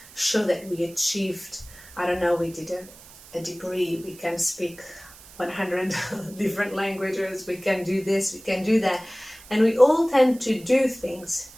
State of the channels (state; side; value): noise; right; hiss, 20 dB below the sound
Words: show that we achieved, I don't know, we did a degree, we can speak 100 different languages, we can do this, we can do that, and we all tend to do things